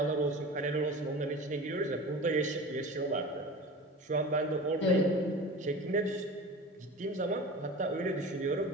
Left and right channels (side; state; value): both; normal; correlation 0.34